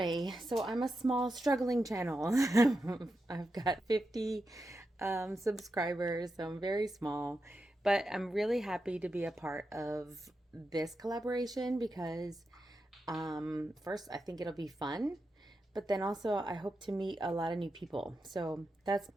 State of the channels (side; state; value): both; normal; correlation 0.88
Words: so I'm a small, struggling channel. I've got 50 subscribers, so I'm very small. But I'm really happy to be a part of this collaboration because, first, I think it'll be fun. But then also, I hope to meet a lot of new people. So that's